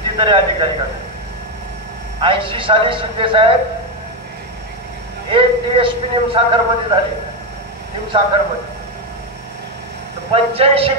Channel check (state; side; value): normal; both; correlation 0.08